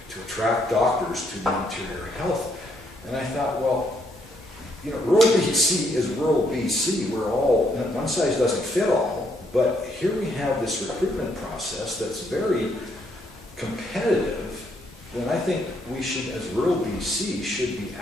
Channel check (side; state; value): both; normal; correlation 0.72